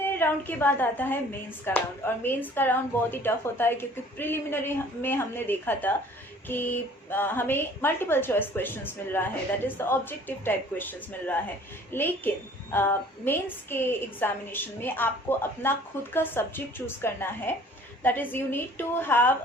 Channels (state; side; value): normal; both; correlation 0.52